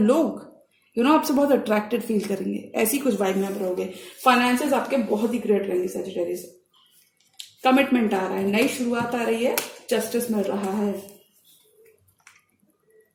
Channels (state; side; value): identical; both; correlation 1.00